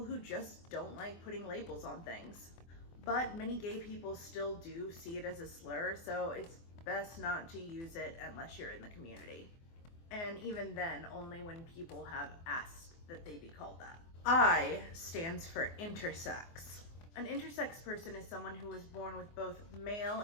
who just don't like putting labels on things. But many gay people still do see it as a slur, so it's best not to use it unless you're in the community. And even then, only when people have asked that they be called that. I stands for intersex. An intersex person is someone who was born with both male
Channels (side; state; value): right; late; 24 ms